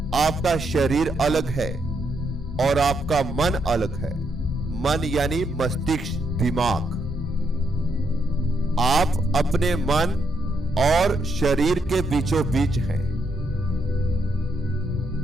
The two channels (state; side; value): normal; both; correlation 0.78